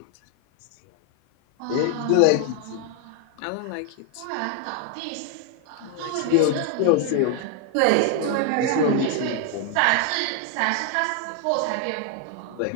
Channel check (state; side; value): different; both; correlation 0.00